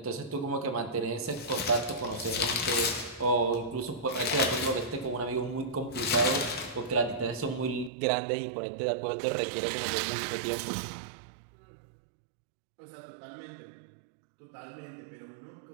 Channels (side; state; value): left; drops out; at 7.9 s